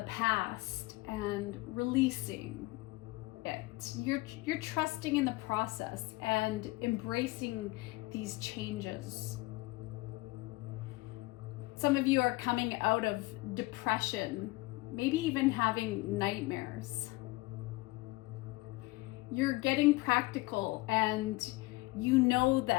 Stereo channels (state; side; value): quieter; right; 21.8 dB